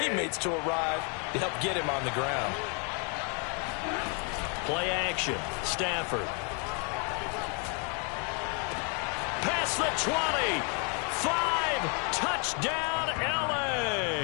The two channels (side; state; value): right; quieter; 37.0 dB